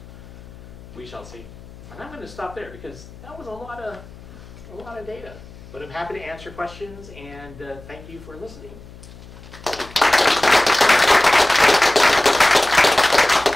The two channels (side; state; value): left; noise; hum, 19 dB below the sound